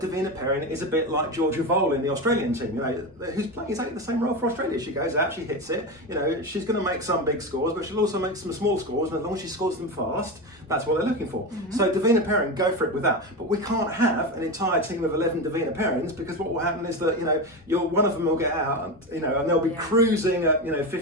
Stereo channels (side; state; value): both; normal; correlation 0.20